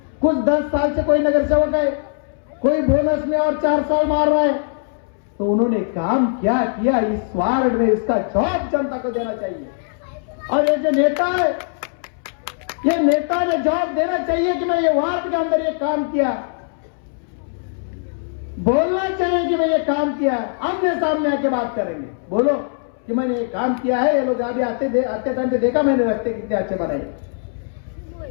कुछ 10 साल से कोई नगर सेवक है, कोई बोनस में और 4 साल मार रहा है, तो उन्होंने काम क्या किया इस वार्ड में, इसका जवाब जनता को देना चाहिए। और ये जो नेता है, ये नेता ने जवाब देना चाहिए कि मैं ये वार्ड के अंदर ये काम किया। बोलना चाहिए कि मैं ये काम किया है, आमने सामने आके बात करेंगे, बोलो कि मैंने ये काम किया है। ये लोग अभी आते टाइम पे देखा मैंने, रास्ते कितने अच्छे बनाए।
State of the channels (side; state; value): right; silent; 64 dB below the other